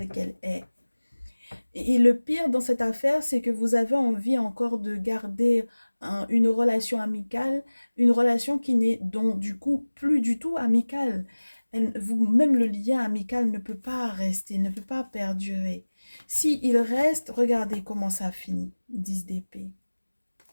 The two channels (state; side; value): inverted; both; correlation -1.00